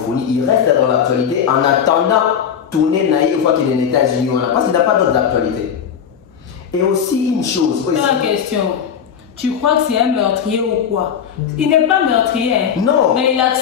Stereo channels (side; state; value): right; quieter; 8.0 dB